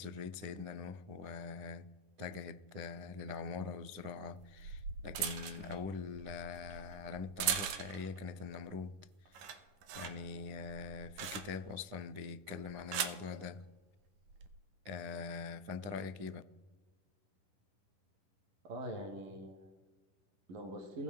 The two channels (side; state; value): left; late; 11 ms